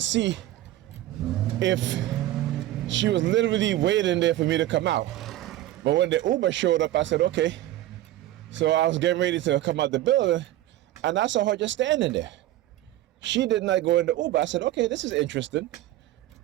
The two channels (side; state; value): left; quieter; 14.6 dB